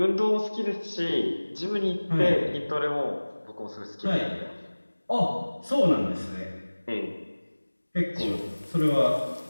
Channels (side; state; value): both; inverted; correlation -1.00